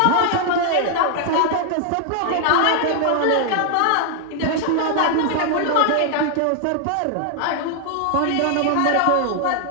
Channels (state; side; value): different; both; correlation 0.00